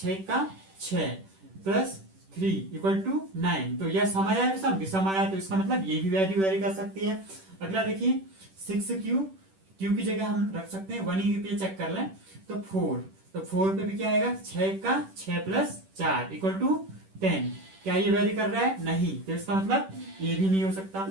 का 6 प्लस 3 इक्वल टू 9, तो यह सम आया विषम, विषम आया, तो इसका मतलब ये भी वैल्यू वेरी कर सकती है। अगला देखिए 6 क्यू की जगह हम रख सकते हैं 1 ही पे चेक कर लें, तो 4, तो 4 पे भी क्या आएगा 6 का 6 प्लस 4 इक्वल टू 10। क्या ये वेरी कर रहा है, नहीं, तो इसका मतलब ये भी नहीं हो सकता।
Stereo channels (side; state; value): left; late; 10 ms